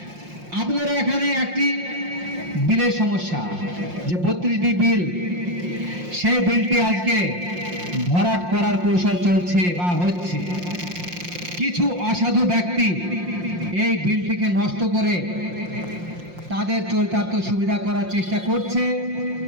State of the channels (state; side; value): late; left; 5.6 ms